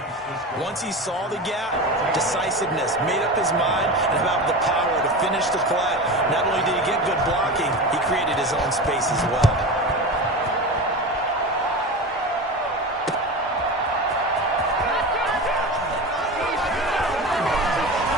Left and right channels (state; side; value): normal; both; correlation 0.27